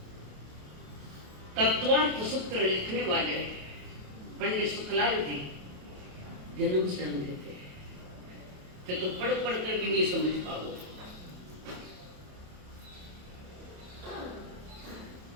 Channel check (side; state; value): left; late; 28 ms